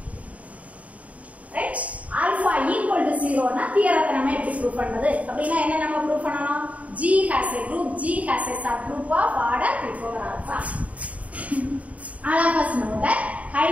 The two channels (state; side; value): late; left; 0.068 ms